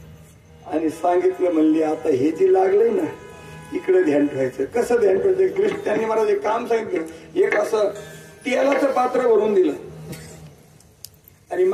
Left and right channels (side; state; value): both; identical; correlation 1.00